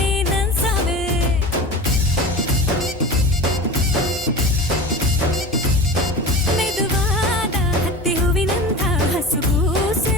ನನ್ ಸಾವೆ. ಮೆದುವಾದ ಹತ್ತಿ ಹೂವಿನಂಥ ಹಸುಗೂಸೆ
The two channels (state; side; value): normal; both; correlation 0.32